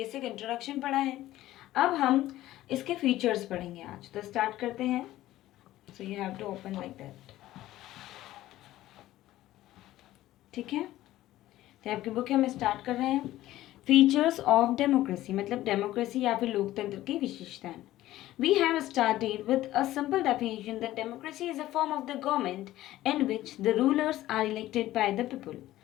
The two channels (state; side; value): quieter; right; 15.1 dB